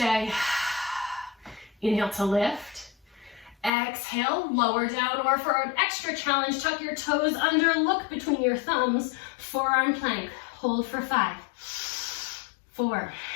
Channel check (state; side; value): drops out; right; at 3.7 s